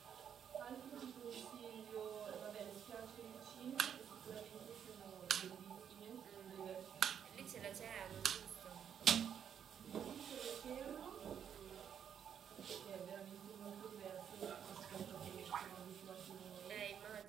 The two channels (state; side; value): quieter; left; 8.5 dB